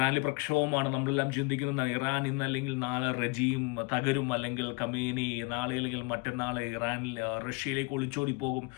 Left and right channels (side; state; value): right; quieter; 28.8 dB